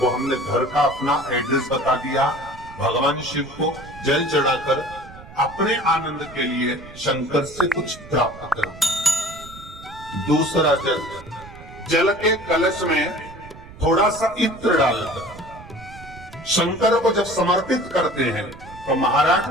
हमने घर का अपना एड्रेस बता दिया, भगवान शिव को जल चढ़ाकर अपने आनंद के लिए शंकर से कुछ प्राप्त करना। दूसरा जल, जल के कलश में थोड़ा सा इत्र डालकर शंकर को जब समर्पित करते हैं तो महाराज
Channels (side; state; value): right; noise; rumble, 18 dB below the sound